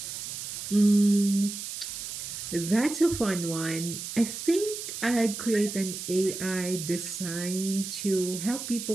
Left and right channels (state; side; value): noise; right; hiss, 7 dB below the sound